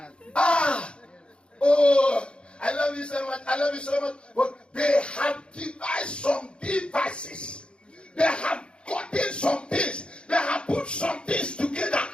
Oh, I love you so much. But they have devised some devices. They have gotten some things. They have put some things together.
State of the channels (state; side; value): late; right; 0.056 ms